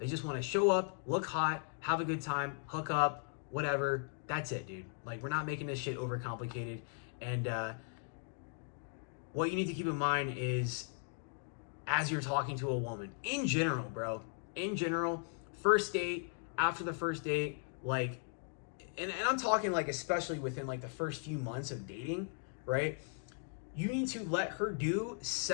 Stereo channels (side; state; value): right; silent; 53 dB below the other